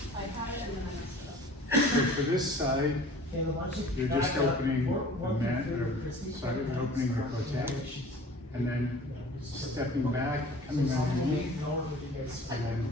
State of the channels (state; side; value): normal; both; correlation 0.46